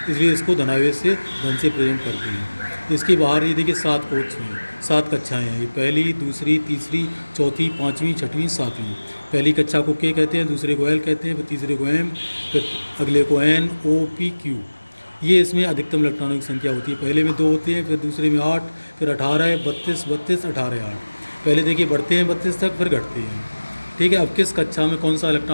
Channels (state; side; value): inverted; both; correlation -1.00